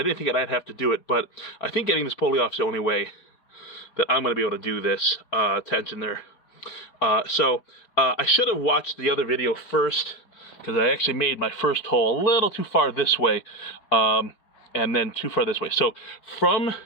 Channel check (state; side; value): late; right; 4.5 ms